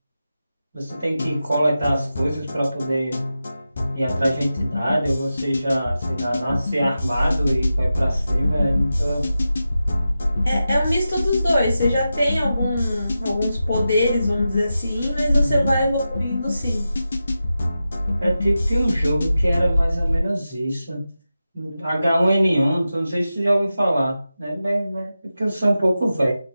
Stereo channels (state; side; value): inverted; both; correlation -0.92